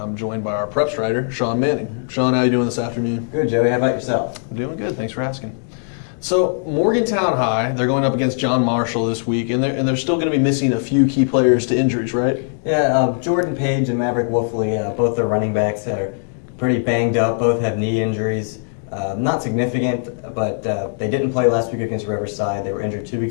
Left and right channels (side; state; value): right; silent; digital silence